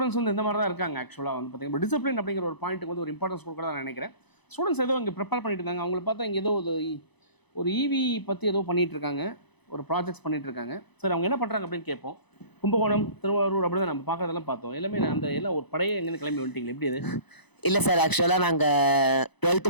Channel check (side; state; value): right; late; 0.99 ms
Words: வந்து இந்த மாதிரி தான் இருக்காங்க. ஆக்சுவலாக வந்து பார்த்தீங்கன்னா டிசிப்ளின் அப்படிங்கிற ஒரு பாயிண்ட்டுக்கு வந்து ஒரு இம்பார்ட்டன்ஸ் கொடுக்க தான் நினைக்கிறேன். ஸ்டூடெண்ட்ஸ் ஏதோ இங்கே ப்ரிப்பேர் பண்ணிட்டு இருந்தாங்க. அவங்கள பார்த்தா இங்கே ஏதோ ஒரு EV பற்றி ஏதோ பண்ணிகிட்டு இருக்காங்க, ஒரு ப்ராஜெக்ட்ஸ் பண்ணிட்டு இருக்காங்க. சரி அவங்க என்ன பண்ணுறாங்க அப்படின்னு கேட்போம். கும்பகோணம், திருவாரூர் அப்படி தான் நம்ம பார்க்கறதெல்லாம் பார்த்தோம். எல்லாமே அந்த எல்லாம் ஒரு படையே எங்கேருந்து கிளம்பி வந்துட்டீங்களா? எப்படி அது? இல்லை சார், ஆக்சுவலாக நாங்கள் 12th